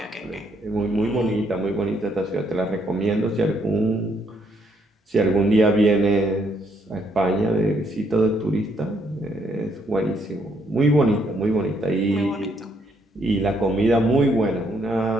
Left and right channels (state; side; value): normal; both; correlation 0.72